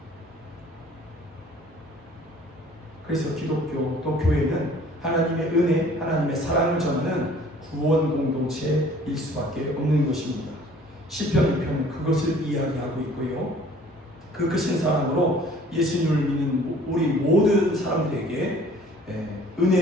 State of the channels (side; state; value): both; normal; correlation 0.53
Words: 그래서 기독교 또 교회는 하나님의 은혜, 하나님의 사랑을 전하는 구원 공동체일 수밖에 없는 것입니다. 시편 2편은 그것을 이야기하고 있고요. 그 크신 사랑으로 예수님을 믿는 우리 모든 사람들에게